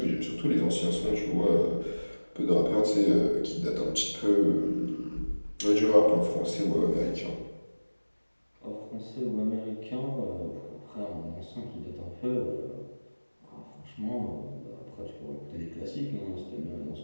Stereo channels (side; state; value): both; inverted; correlation -1.00